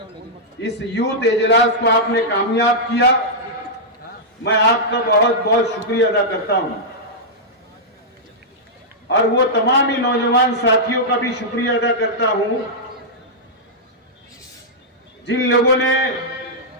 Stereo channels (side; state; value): both; normal; correlation -0.09